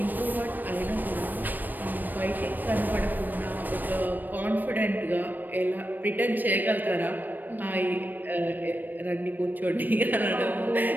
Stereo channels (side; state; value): left; late; 0.089 ms